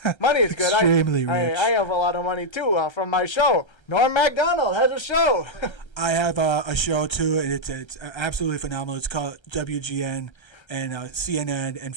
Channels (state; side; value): late; right; 1.3 ms